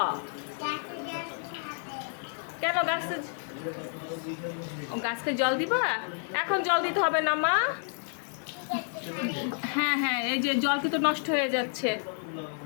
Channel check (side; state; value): right; silent; 55 dB below the other